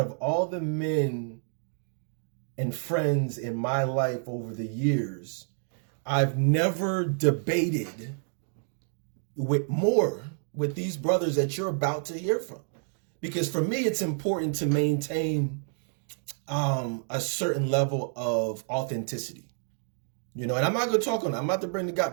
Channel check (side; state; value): left; silent; digital silence